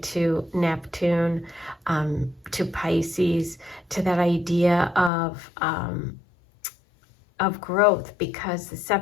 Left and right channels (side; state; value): right; drops out; at 5.1 s